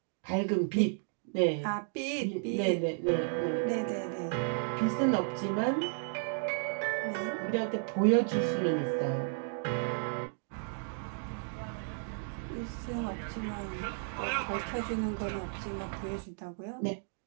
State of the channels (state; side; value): silent; left; 56 dB below the other